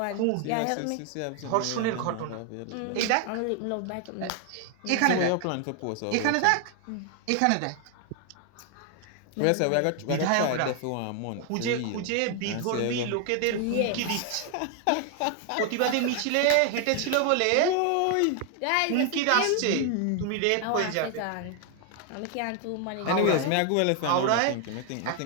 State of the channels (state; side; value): different; both; correlation 0.00